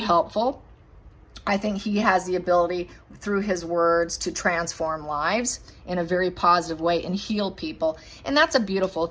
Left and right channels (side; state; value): both; identical; correlation 1.00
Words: I think he has the ability through his words to transform lives in a very positive way and heal people. And that's a beautiful